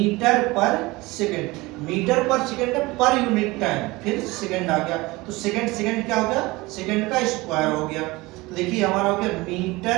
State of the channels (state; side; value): quieter; left; 21.7 dB